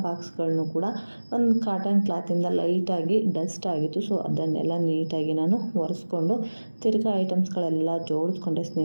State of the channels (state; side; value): inverted; both; correlation -1.00